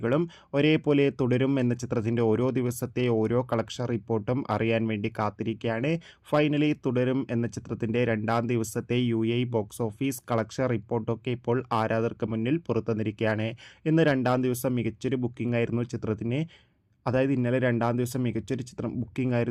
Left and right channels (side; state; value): both; identical; correlation 1.00